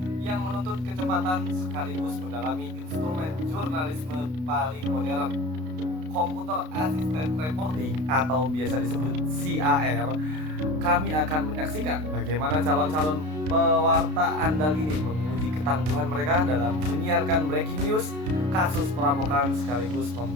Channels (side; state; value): left; late; 32 ms